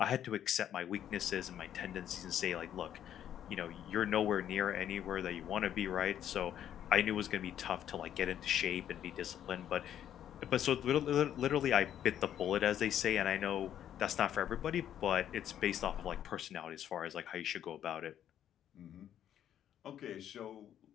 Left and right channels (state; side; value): quieter; right; 10.4 dB